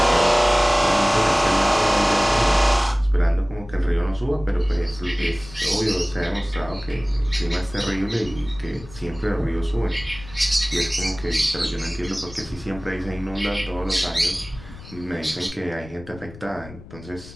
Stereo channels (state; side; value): noise; left; rumble, 17 dB below the sound